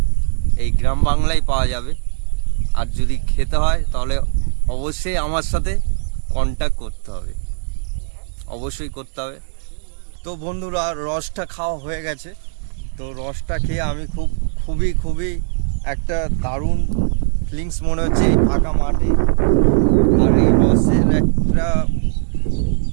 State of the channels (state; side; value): silent; left; 65 dB below the other